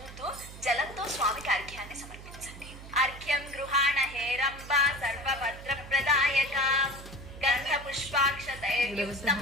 జలంతో స్వామికి అర్ఘ్యాన్ని సమర్పించండి. అర్ఘ్యం గృహాణ హేరంబ సర్వభద్ర ప్రదాయక గంధ పుష్పాక్షతైర్యుక్తం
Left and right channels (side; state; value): right; noise; hum, 14 dB below the sound